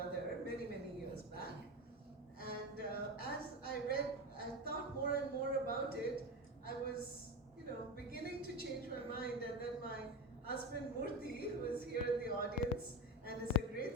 many, many years back. And as I read, I thought more and more about it. I was beginning to change my mind, and then my husband Murthy, who is here in the audience and is a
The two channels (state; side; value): normal; both; correlation 0.21